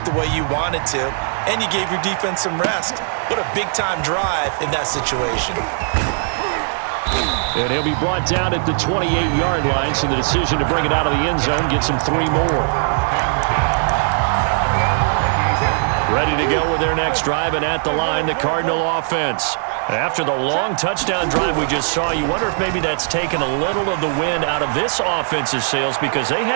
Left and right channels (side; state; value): left; silent; digital silence